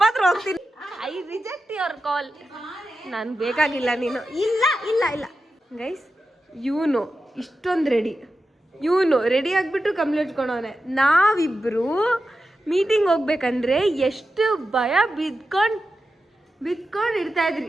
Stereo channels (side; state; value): both; normal; correlation 0.91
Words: ಹತ್ರ ಹೋಗ್ತೀನಿ. I reject your call. ನಾನು ಬೇಕಾಗಿಲ್ಲ ನೀನು. ಇಲ್ಲ ಇಲ್ಲ ಇಲ್ಲ ಗೈಸ್, ಇವನು ಇಷ್ಟೊಂದು ಇವನು ರೆಡಿ ಆಗಿಬಿಟ್ಟು ಕಂಪ್ಲೇಂಟ್ ಇಟ್ಕೊಂಡವನೆ. ನಾವಿಬ್ರು ಮೀಟಿಂಗ್ ಹೋಗ್ಬೇಕಂದ್ರೆ ಎಷ್ಟು ಭಯ ಬಿದ್ಕೊಂಡು ಇರ್ತಾ ಇದ್ರಿ.